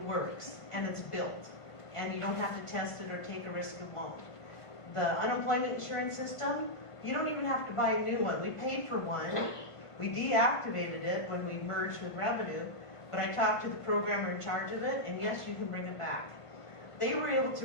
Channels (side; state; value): right; late; 1.5 ms